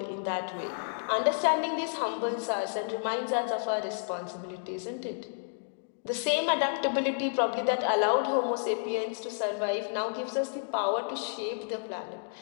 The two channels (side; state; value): right; silent; digital silence